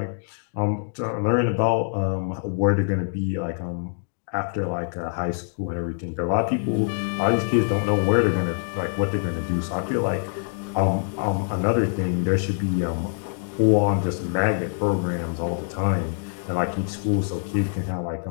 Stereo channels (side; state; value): right; silent; digital silence